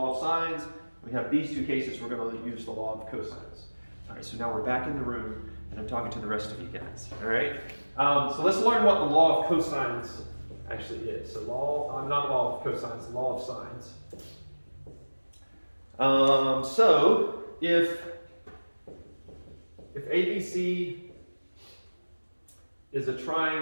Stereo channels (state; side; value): inverted; both; correlation -1.00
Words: of sines. We have these 2 cases, we're going to use the law of cosines. All right, so now we're back in the room, and I'm talking to the rest of you guys. All right, so let's learn what the law of cosines actually is. So not law of cosines, law of sines. So if ABC is a